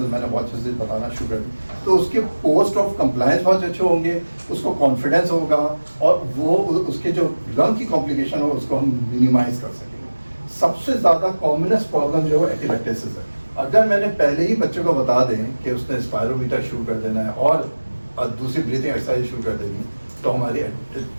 मैंने बहुत अच्छे से बताना शुरू कर दी, तो उसके पोस्ट ऑफ कंप्लायंस बहुत अच्छे होंगे, उसको कॉन्फिडेंस होगा, और वो उसके जो लंग की कॉम्प्लिकेशन हो उसको हम मिनिमाइज कर सकेंगे। सबसे ज़्यादा कॉमनेस्ट प्रॉब्लम जो है एपिलेक्टेसिस है। अगर मैंने पहले ही बच्चे को बता दें कि उसने स्पायरोमीटर शुरू कर देना है और दूसरी ब्रीथिंग एक्सरसाइज शुरू कर देनी, तो हमारी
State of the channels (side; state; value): both; inverted; correlation -1.00